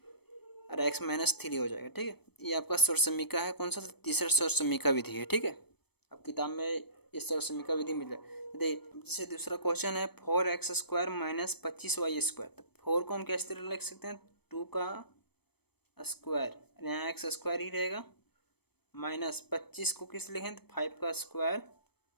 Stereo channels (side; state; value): right; late; 0.97 ms